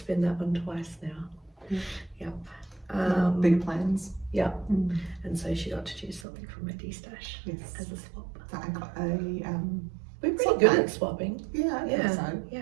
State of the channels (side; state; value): left; drops out; at 6.2 s